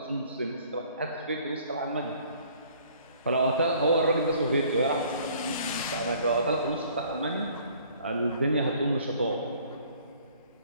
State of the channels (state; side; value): inverted; both; correlation -0.57